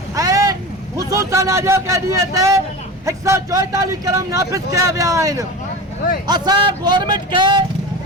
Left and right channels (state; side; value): normal; both; correlation 0.30